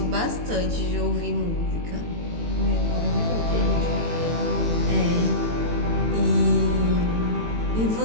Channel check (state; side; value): late; left; 18 ms